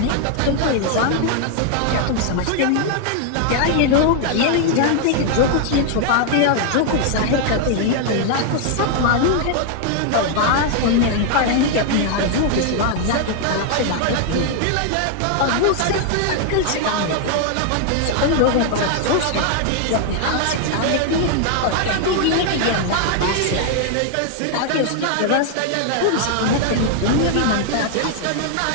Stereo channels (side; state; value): both; different; correlation 0.00